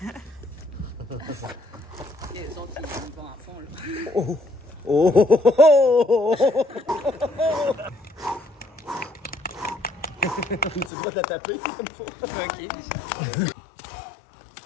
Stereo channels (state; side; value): drops out; right; at 10.9 s